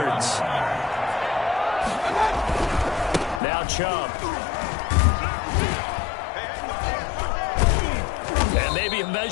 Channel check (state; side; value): drops out; right; at 3.4 s